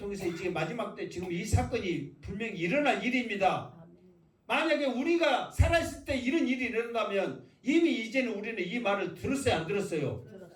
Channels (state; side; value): identical; both; correlation 1.00